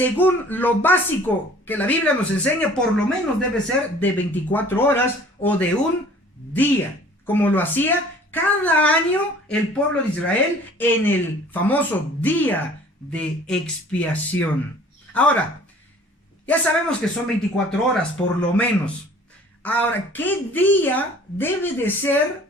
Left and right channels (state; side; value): normal; both; correlation 0.51